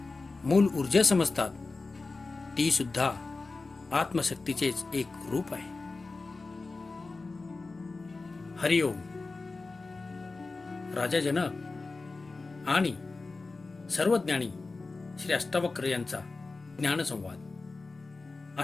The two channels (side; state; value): right; quieter; 3.7 dB